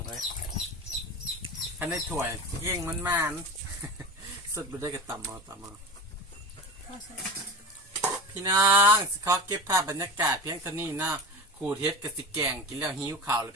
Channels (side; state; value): both; normal; correlation 0.28